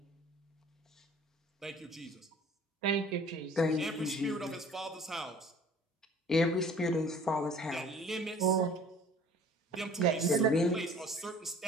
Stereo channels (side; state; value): both; normal; correlation 0.49